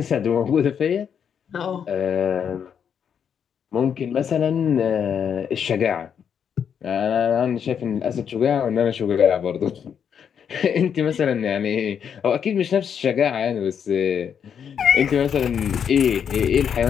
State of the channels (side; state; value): right; quieter; 7.8 dB